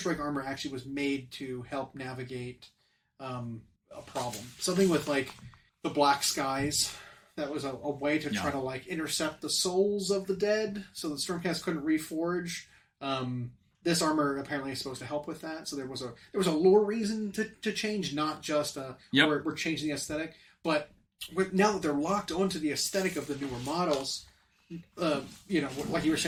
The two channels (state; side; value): identical; both; correlation 1.00